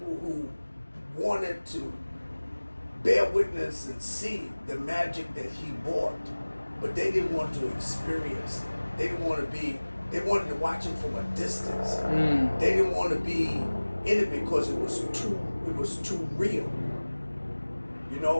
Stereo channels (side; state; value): both; inverted; correlation -1.00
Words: who wanted to bear witness and see the magic that he brought, but they didn't want to experience it. They didn't want to they wanted to watch it from a distance. They didn't want to be in it because it was too real. You